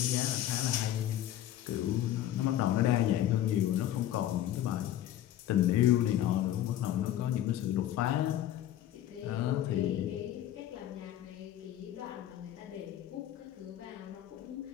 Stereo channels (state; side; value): quieter; right; 12.3 dB